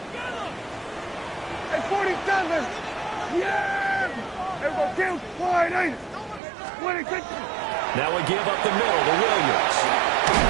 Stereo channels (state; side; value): drops out; left; at 6.4 s